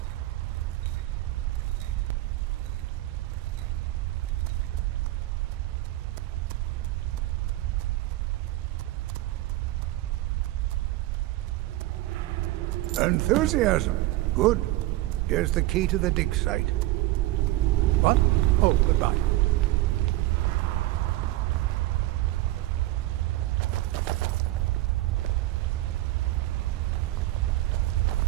Enthusiasm. Good. Here's the key to the dig site. What? Oh, goodbye.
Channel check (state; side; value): quieter; left; 17.1 dB